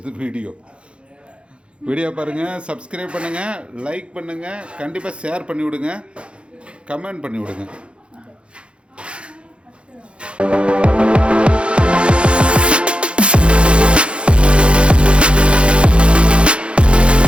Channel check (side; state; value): left; late; 0.058 ms